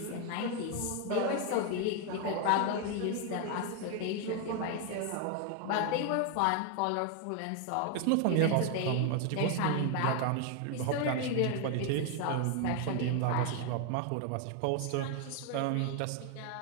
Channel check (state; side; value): different; both; correlation 0.00